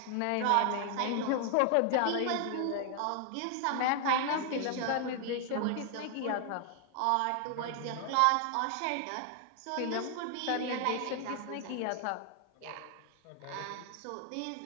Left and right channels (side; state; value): both; different; correlation 0.00